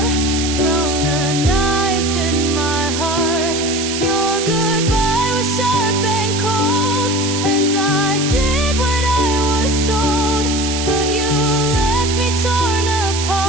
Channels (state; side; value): noise; right; hiss, 5 dB below the sound